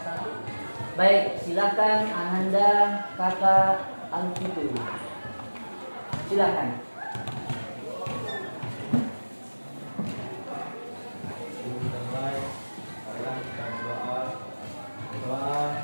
1. Baik, silakan Ananda Kakak Alfitu. Silakan.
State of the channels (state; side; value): inverted; both; correlation -1.00